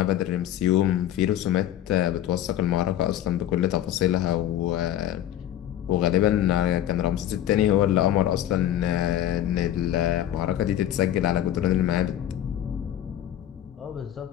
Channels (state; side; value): quieter; right; 11.8 dB